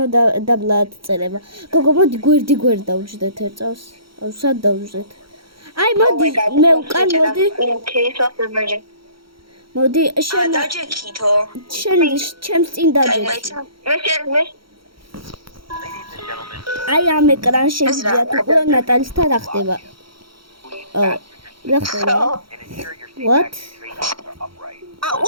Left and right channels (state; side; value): late; left; 0.74 ms